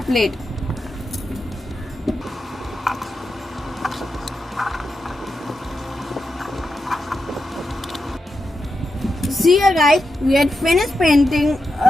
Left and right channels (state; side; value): normal; both; correlation 0.88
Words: plate. See here guys, we had finished painting